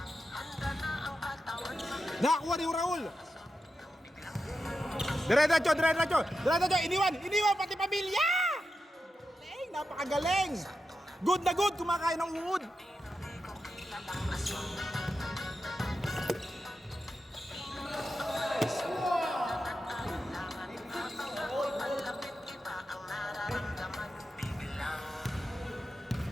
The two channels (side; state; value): both; normal; correlation 0.89